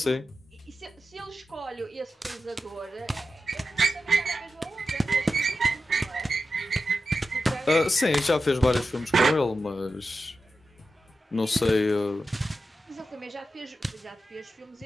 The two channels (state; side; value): normal; both; correlation 0.91